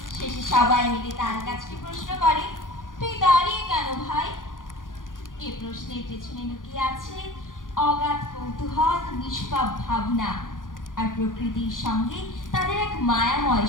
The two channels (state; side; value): late; right; 0.89 ms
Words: শেষে সবাই মিলে তার কাছে প্রশ্ন করে, তুই দাঁড়িয়ে কেন ভাই? এ প্রশ্নের পেছনে লুকিয়ে আছে অগাধ কৌতূহল, নিষ্পাপ ভাবনা আর প্রকৃতির সঙ্গে তাদের এক মায়াময়